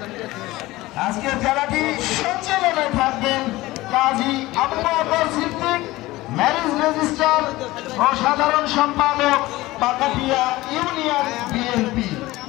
আজকের খেলাটি সঞ্চালনায় থাকবেন কাজী আবু বকর সিদ্দিক, ম্যারেজ রেজিস্ট্রার ও সাধারণ সম্পাদক, পাকাটিয়া ইউনিয়ন বিএনপি।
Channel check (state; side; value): quieter; right; 18.6 dB